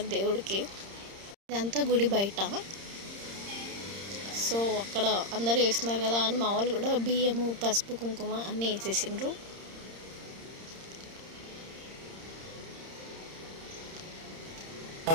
దేవుడికి. ఇదంతా గుడి బయట. సో అక్కడ అందరూ వేస్తున్నారు కదా అని మా వాళ్ళు కూడా బియ్యము, పసుపు, కుంకుమ అన్నీ వేసేసిండ్రు.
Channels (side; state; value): left; late; 30 ms